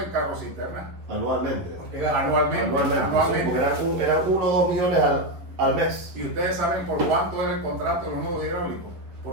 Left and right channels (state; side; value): late; left; 11 ms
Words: carros cisterna. Anualmente. Anualmente. Sí, eran 1 o 2 millones al mes. Y ustedes saben por cuánto era el contrato de los nodos hidráulicos.